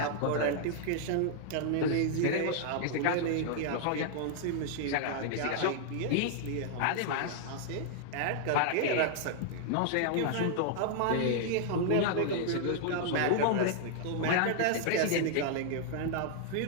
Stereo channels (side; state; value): both; different; correlation -0.01